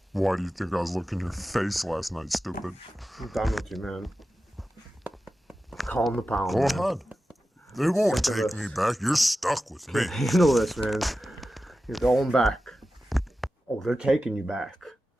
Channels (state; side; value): normal; both; correlation 0.93